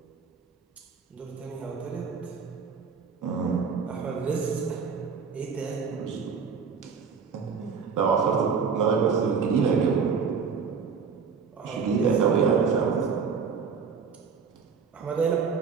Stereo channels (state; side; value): quieter; left; 5.8 dB